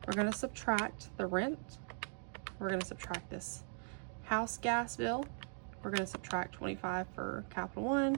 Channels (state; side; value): silent; left; 51 dB below the other